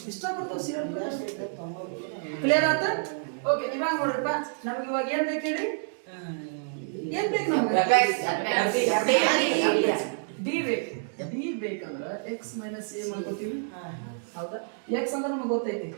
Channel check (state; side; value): silent; left; digital silence